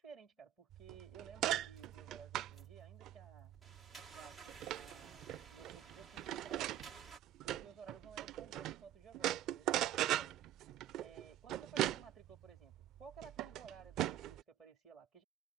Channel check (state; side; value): quieter; left; 12.2 dB